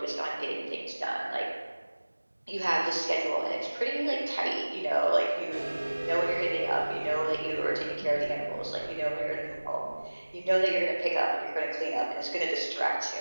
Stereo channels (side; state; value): both; inverted; correlation -1.00